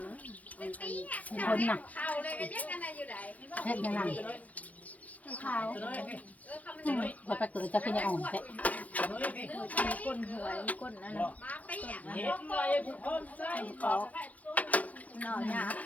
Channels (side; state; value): right; late; 0.074 ms